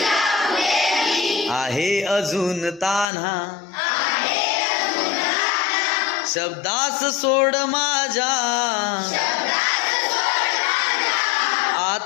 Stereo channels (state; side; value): drops out; right; at 3.1 s